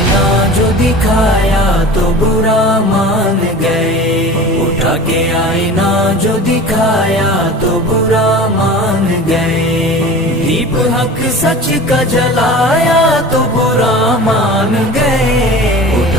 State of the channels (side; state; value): both; normal; correlation 0.37